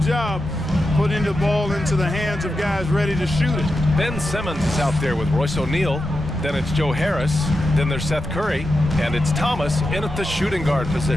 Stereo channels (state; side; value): normal; both; correlation 0.89